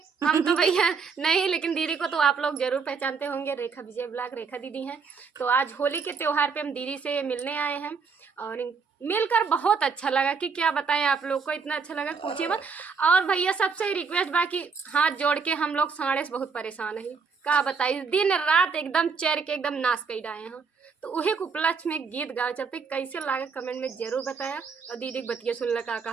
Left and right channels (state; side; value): quieter; left; 5.3 dB